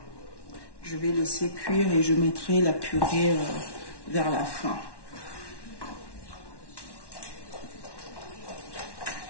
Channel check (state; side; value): late; right; 1.1 ms